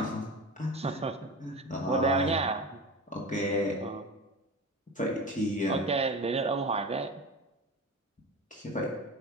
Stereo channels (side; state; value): both; normal; correlation 0.29